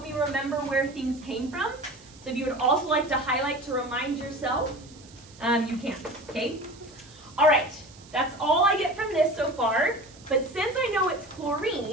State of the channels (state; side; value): noise; right; hiss, 23 dB below the sound